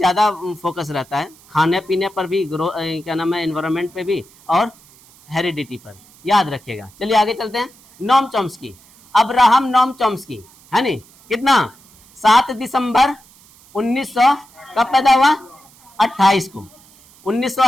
फोकस रहता है, खाने पीने पर भी, क्या नाम है, इन्वायरमेंट पे भी, और हेरिडिटी पर, याद रखिएगा। चलिए आगे चलते हैं। Noam Chomsky, Abraham Noam Chomsky है नहीं, कितना, 7 दिसंबर 1900 कब पैदा हुआ, 28 को,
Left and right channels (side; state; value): right; noise; hiss, 27 dB below the sound